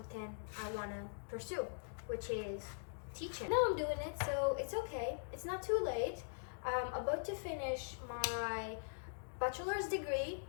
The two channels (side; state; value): right; silent; digital silence